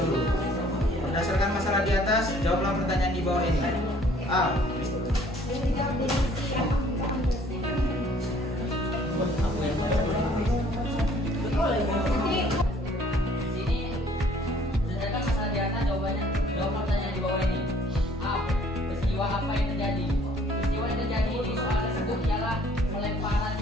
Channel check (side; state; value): both; normal; correlation 0.58